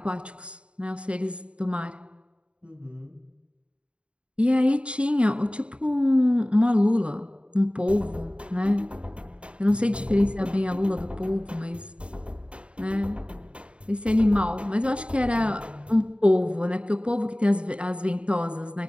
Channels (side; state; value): left; late; 0.058 ms